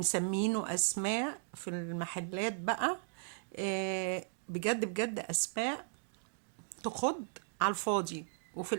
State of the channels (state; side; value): silent; left; digital silence